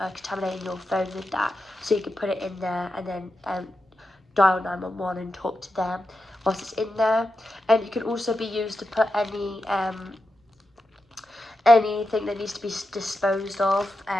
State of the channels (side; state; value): both; normal; correlation 0.89